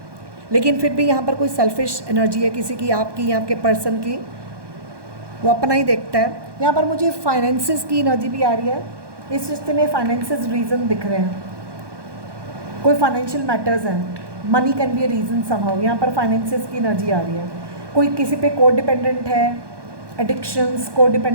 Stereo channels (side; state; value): left; late; 1.2 ms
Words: लेकिन फिर भी यहाँ पर कोई सेल्फिश एनर्जी है किसी की, आपकी या आपके पर्सन की, वो अपना ही देखता है। यहाँ पर मुझे फाइनेंसेस की एनर्जी भी आ रही है। इस रिश्ते में फाइनेंसेस रीज़न दिख रहे हैं, कोई फाइनेंशियल मैटर्स हैं, money can be a reason somehow. यहाँ पर फाइनेंसेस की एनर्जी आ रही है, कोई किसी पे को डिपेंडेंट है, एडिक्शंस, को